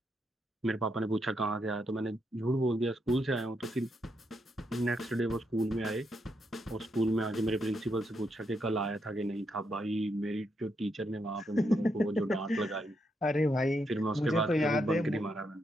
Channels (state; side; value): normal; both; correlation 0.80